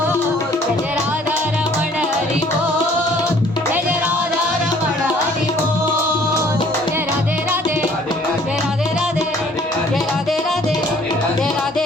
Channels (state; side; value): normal; both; correlation 0.57